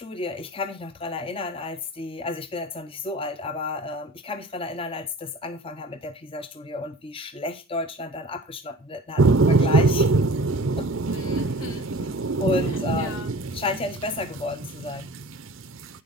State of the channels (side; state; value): both; normal; correlation 0.42